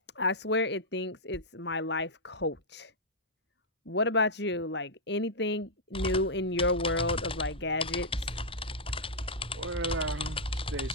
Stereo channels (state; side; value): normal; both; correlation -0.07